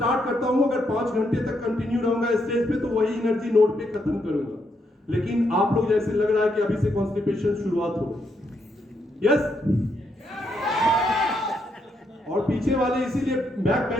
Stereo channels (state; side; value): normal; both; correlation 0.78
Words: करता हूं, अगर 5 घंटे तक कंटिन्यू रहूंगा स्टेज पे तो वही एनर्जी नोट पे खत्म करूंगा। लेकिन आप लोग जैसे लग रहा है कि अभी से कॉन्स्टिपेशन शुरुआत हो गई। यस? और पीछे वाले इसीलिए बैक